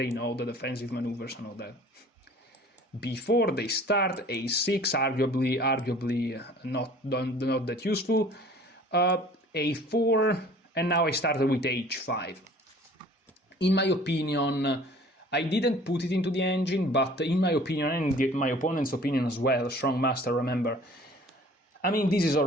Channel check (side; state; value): both; normal; correlation 0.49